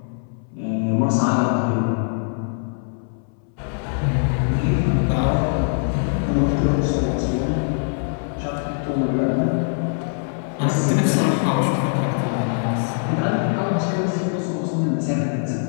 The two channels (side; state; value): right; silent; 64 dB below the other